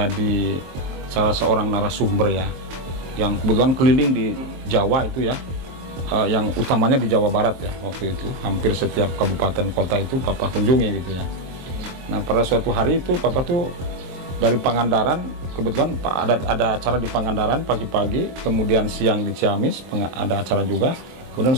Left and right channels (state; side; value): late; left; 23 ms